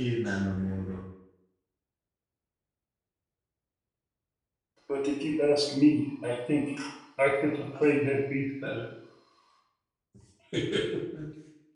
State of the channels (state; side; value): identical; both; correlation 1.00